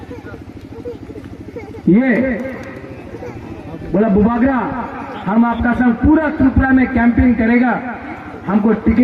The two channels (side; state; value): both; identical; correlation 1.00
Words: ये बोला बुबागरा हम आपका संग पूरा त्रिपुरा में कैंपेन करेगा, हमको